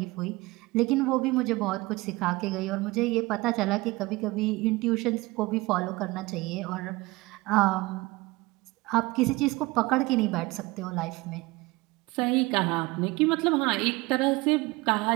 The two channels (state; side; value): quieter; left; 21.6 dB